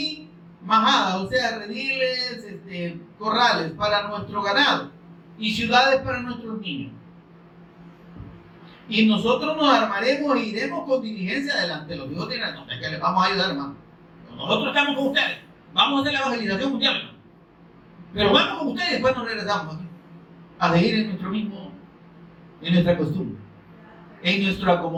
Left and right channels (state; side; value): identical; both; correlation 1.00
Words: majadas, o sea, rediles, corrales para nuestro ganado, y ciudades para nuestros niños. Y nosotros nos armaremos e iremos con diligencia adelante. Los hijos dirán, no, es que les vamos a ayudar, hermano. Nosotros estamos con ustedes. Vamos a hacer la evangelización mundial, hermano. Pero vamos con ustedes y después nos regresamos aquí a seguir en nuestro mismo, en nuestra costumbre, en nuestro